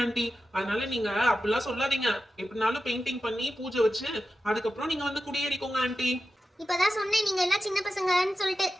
ஆன்ட்டி. அதனால நீங்க அப்படிலாம் சொல்லாதீங்க. எப்படினாலும் பெயிண்டிங் பண்ணி பூஜை வச்சு அதுக்கப்புறம் நீங்க வந்து குடியேறிக்கோங்க ஆன்ட்டி. இப்பதான் சொன்னேன் நீங்க எல்லாம் சின்ன பசங்கன்னு சொல்லிட்டு.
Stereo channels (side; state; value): both; normal; correlation 0.92